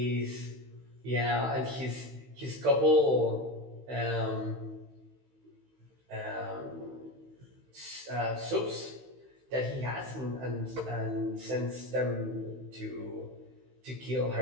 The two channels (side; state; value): left; late; 16 ms